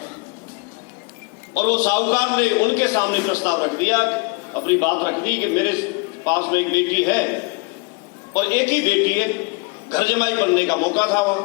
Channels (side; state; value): right; quieter; 29.0 dB